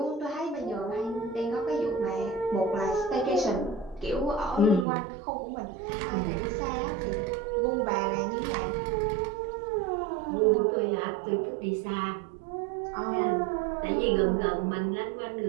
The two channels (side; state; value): left; drops out; at 4.9 s